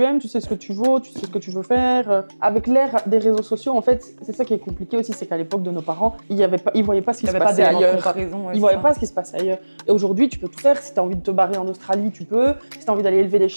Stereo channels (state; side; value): inverted; both; correlation -1.00